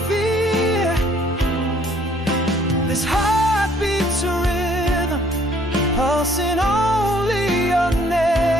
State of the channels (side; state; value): both; normal; correlation 0.61